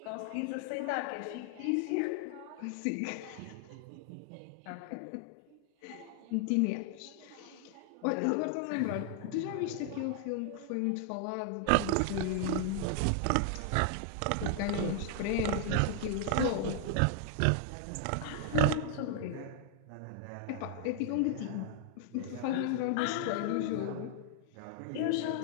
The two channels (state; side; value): different; both; correlation 0.00